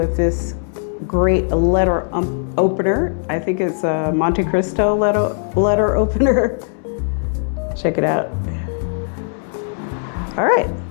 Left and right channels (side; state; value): right; silent; 67 dB below the other